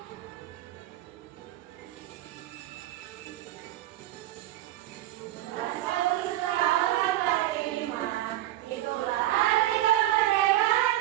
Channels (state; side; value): quieter; left; 14.9 dB